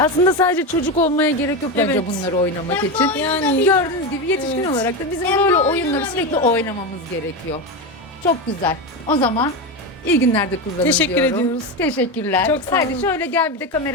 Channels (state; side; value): normal; both; correlation 0.16